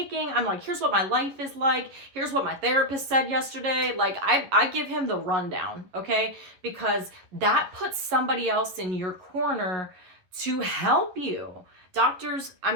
I'm like, here's what my life is like. Here's what my therapist said yesterday. Like, I give him the rundown, okay? Because that puts somebody else in your corner to help you. Doctors, I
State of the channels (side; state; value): left; late; 11 ms